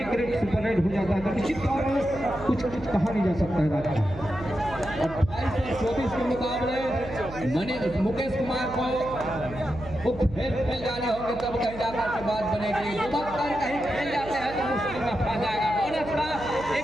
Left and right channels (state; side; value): noise; right; hum, 14 dB below the sound